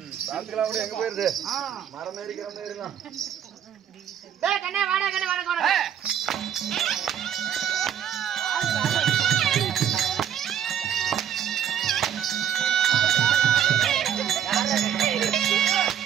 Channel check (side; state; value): left; quieter; 9.3 dB